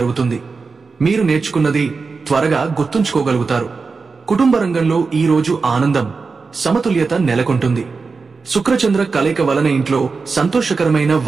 మీరు నేర్చుకున్నది త్వరగా గుర్తుంచుకోగలుగుతారు. కుటుంబ రంగంలో ఈ రోజు ఆనందం, సమతుల్యత నెలకొంటుంది. శుక్రచంద్ర కలయిక వలన ఇంట్లో సంతోషకరమైన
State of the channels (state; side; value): quieter; left; 4.5 dB